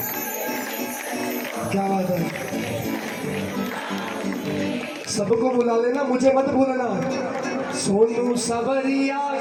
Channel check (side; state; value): both; identical; correlation 1.00